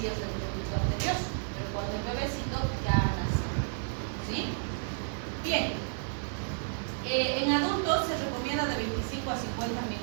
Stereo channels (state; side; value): silent; left; 57 dB below the other